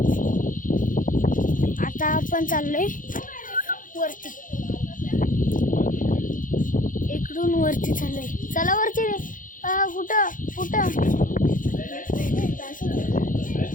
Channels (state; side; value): late; right; 0.39 ms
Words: आता आपण चाललोय वरती. इकडून वरती चाललोय. चला वरती रे. कुठं कुठं